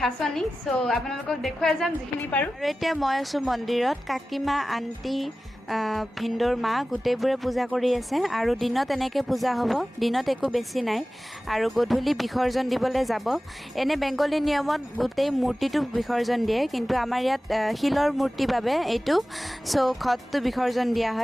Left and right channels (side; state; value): both; normal; correlation 0.96